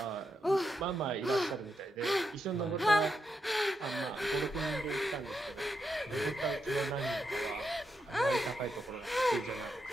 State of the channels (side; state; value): both; normal; correlation 0.84